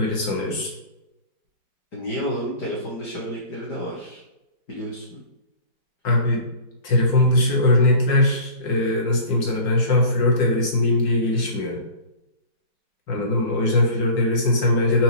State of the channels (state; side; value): late; right; 5.5 ms